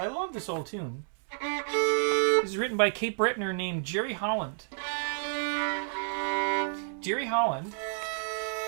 love this old tune. This is written by Cape Brettoner named Jerry Holland. Jerry Holland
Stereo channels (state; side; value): silent; left; 58 dB below the other